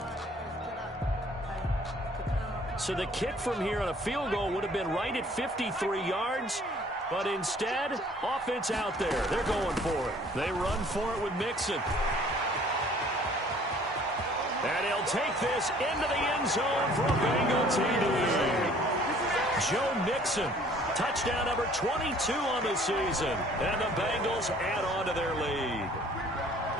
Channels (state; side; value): normal; both; correlation 0.55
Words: So the kick from here on a field goal would have been right at 53 yards. But instead, offense out there. They're going for it. They run for it with Mixon. And he'll take this into the end zone for a Bengal TD. Joe Mixon, touchdown number 22 on the season. And the Bengals add on to their lead.